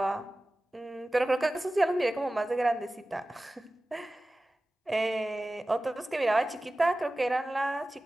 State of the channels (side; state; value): both; normal; correlation 0.96